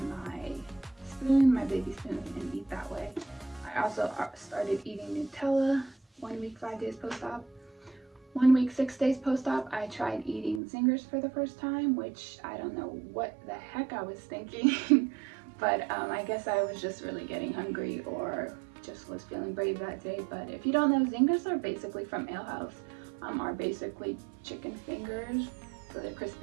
my spoon, my baby spoon, and eat that way. I also started eating Nutella 1 week, 5 days post-op. 1 week, 6 days post-op, I tried eating Zingers for the first time, which I don't know what the heck I was thinking. But I guess I was just really getting hungry or just was feeling brave that day. But if you don't know, Zingers are basically from Ale House, are basically chicken fingers. So they're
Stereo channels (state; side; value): drops out; left; at 10.6 s